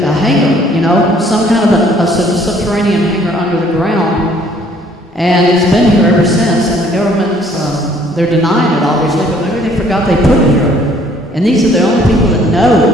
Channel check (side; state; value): both; normal; correlation 0.60